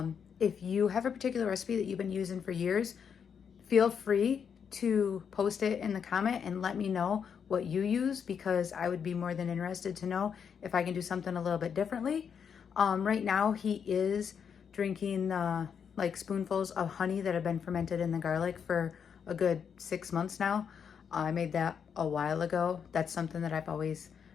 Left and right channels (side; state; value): right; quieter; 7.2 dB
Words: If you have a particular recipe that you've been using for years, feel free to post it in the comment and let me know what you use, because I would be more than interested to know if I can do something a little bit differently. Right now he is drinking the like spoonfuls of honey that have been fermented in the garlic for a good 6 months now. I made that a while ago. That's something that I've always